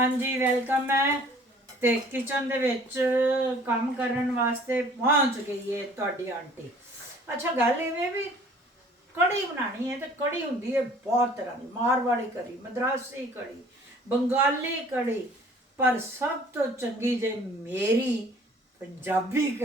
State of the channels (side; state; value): both; normal; correlation 0.53